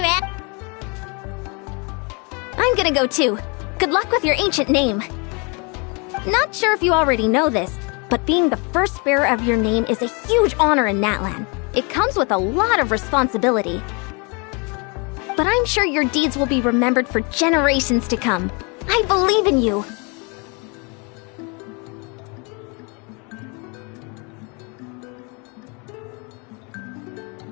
I'm gonna go too. Good luck with your ancient name. Not sure if you already know this, but being the first bearer of your name is a huge honor in Natlan. It comes with a lot of responsibility. But I'm sure your deeds will be remembered for generations to come. I believe in you.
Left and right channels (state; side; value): quieter; right; 32.2 dB